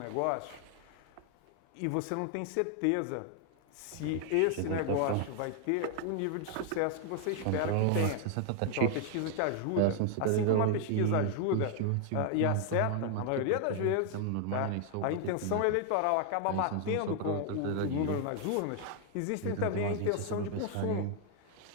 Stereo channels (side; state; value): both; different; correlation 0.00